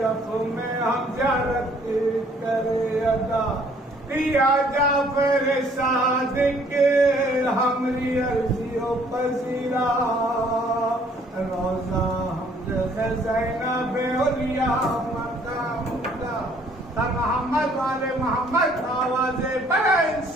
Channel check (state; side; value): normal; both; correlation 0.61